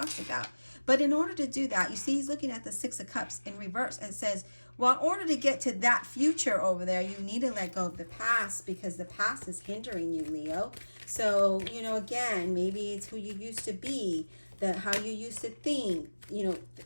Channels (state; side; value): inverted; both; correlation -1.00